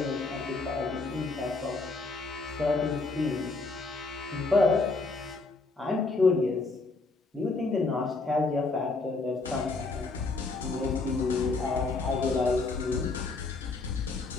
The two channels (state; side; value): quieter; right; 3.7 dB